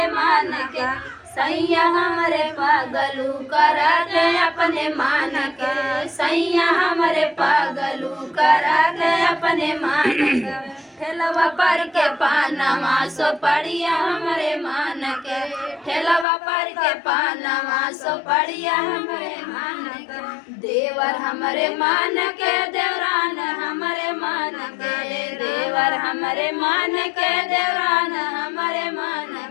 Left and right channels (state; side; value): drops out; right; at 16.2 s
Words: मान के सैया हमरे पागलू करा दे अपने मान के सैया हमरे पागलू करा दे अपने मान के ठेलवा पर के पानावा सो पड़िया हमरे मान के ठेलवा पर के पानावा सो पड़िया हमरे मान के देवर हमरे मान के देवरान हमरे मान के देवर हमरे मान के देवरान हमरे मान